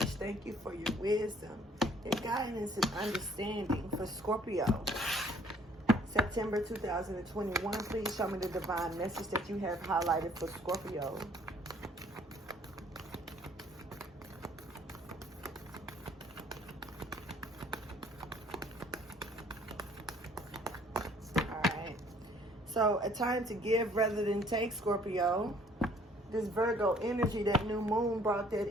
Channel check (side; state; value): both; normal; correlation 0.59